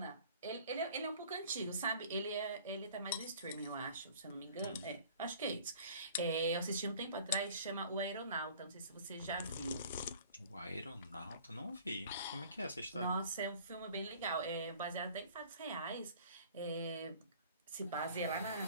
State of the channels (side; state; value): both; inverted; correlation -0.49